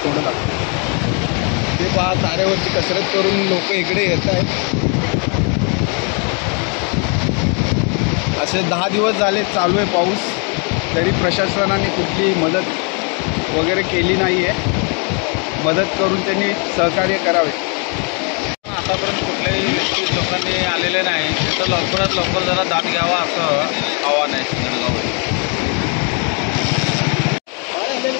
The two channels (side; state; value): right; quieter; 36.8 dB